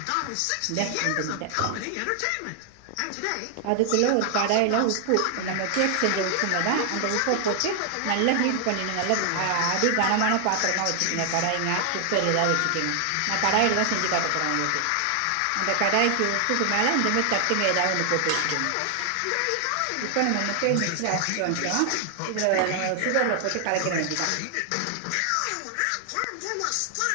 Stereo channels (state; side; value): different; both; correlation 0.00